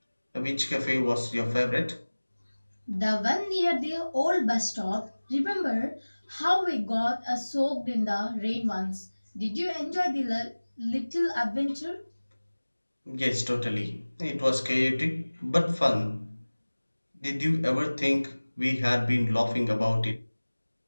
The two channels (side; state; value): both; inverted; correlation -1.00